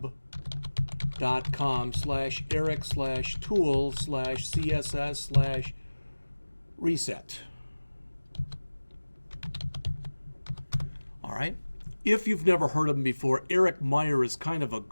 All right. If you've never heard of him before, Eric Meier is kind of a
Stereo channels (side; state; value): both; inverted; correlation -1.00